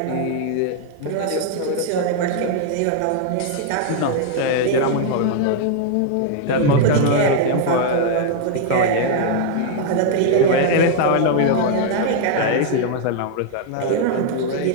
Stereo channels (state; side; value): different; both; correlation 0.00